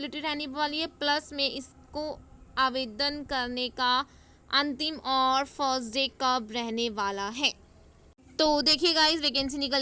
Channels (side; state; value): both; identical; correlation 1.00